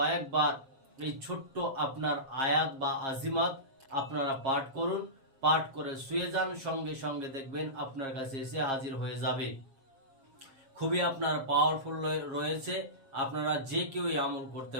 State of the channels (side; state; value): left; late; 7.4 ms